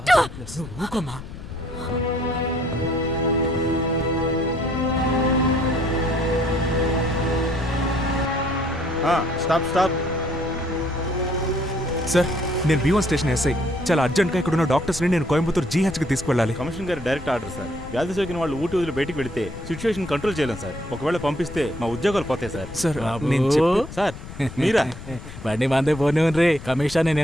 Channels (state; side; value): noise; left; rumble, 13 dB below the sound